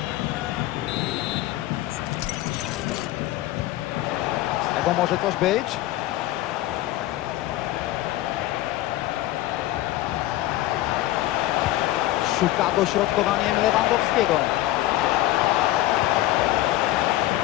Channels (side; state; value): right; quieter; 15.8 dB